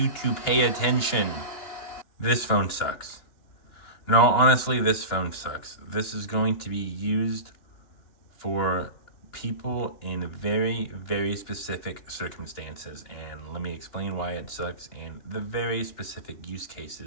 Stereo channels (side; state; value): right; late; 2.9 ms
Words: to pay attention? This phone sucks. No, honestly, this phone sucks. This is going to be used for people in very, very specific circumstances. And let me explain why it sucks and the very specific use